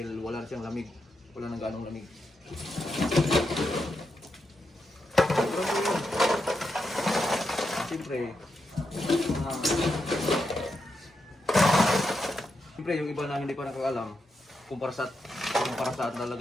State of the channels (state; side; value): normal; both; correlation 0.85